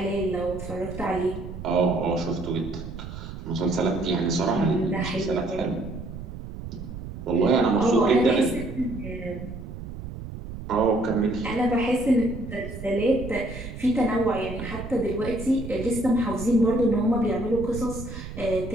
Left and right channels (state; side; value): noise; right; rumble, 10 dB below the sound